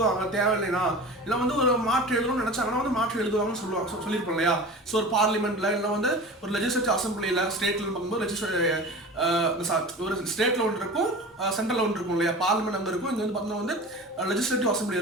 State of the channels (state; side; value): normal; both; correlation 0.35